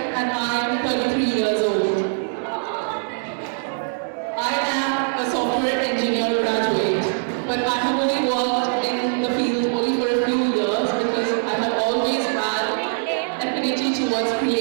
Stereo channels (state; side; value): silent; left; digital silence